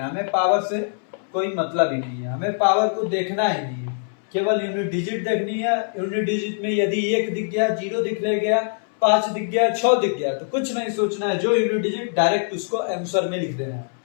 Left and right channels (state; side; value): silent; right; 62 dB below the other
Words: है। हमें पावर से कोई मतलब ही नहीं है, हमें पावर को देखना ही नहीं है, केवल यूनिट डिजिट देखनी है। यूनिट डिजिट में यदि 1 दिख गया, 0 दिख गया, 5 दिख गया, 6 दिख गया तो कुछ नहीं सोचना है, जो यूनिट डिजिट डायरेक्ट उसको आंसर में लिख देना है।